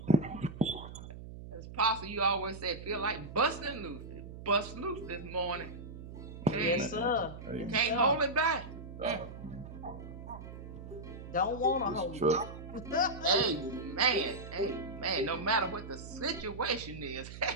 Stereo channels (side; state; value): right; noise; hum, 12 dB below the sound